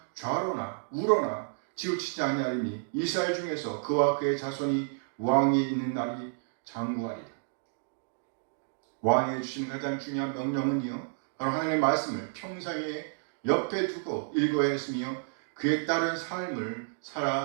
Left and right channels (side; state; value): left; silent; digital silence